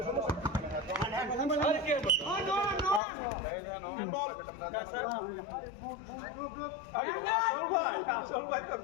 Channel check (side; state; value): right; drops out; at 3.0 s